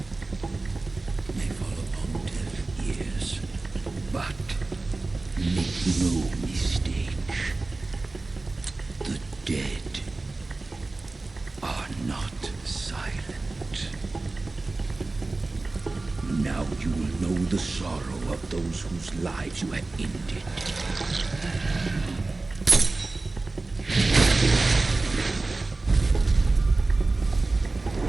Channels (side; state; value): left; quieter; 3.3 dB